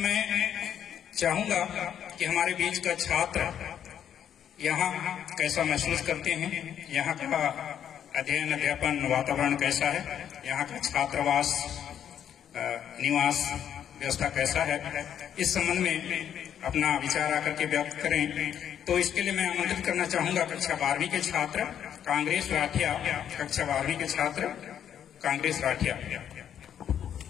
चाहूंगा कि हमारे बीच का छात्र यहाँ कैसा महसूस करते हैं, यहाँ का अध्ययन अध्यापन वातावरण कैसा है, यहाँ का छात्रावास निवास व्यवस्था कैसा है, इस संबंध में अपना विचार आकर के व्यक्त करें। तो इसके लिए मैं आमंत्रित करना चाहूंगा कक्षा 12वीं के छात्र कांग्रेस राठिया, कक्षा 12वीं के छात्र कांग्रेस राठिया।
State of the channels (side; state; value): right; quieter; 9.4 dB